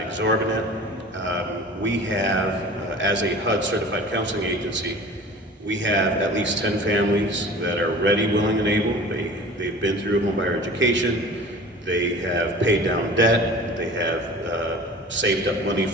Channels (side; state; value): both; normal; correlation 0.41